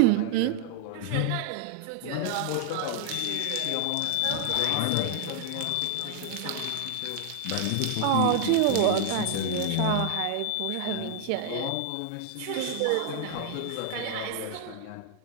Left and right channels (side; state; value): both; different; correlation -0.01